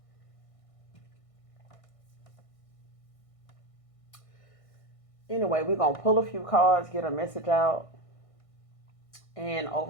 Anyway, we're going to pull a few cards, get a message out. And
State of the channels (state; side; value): late; right; 1.6 ms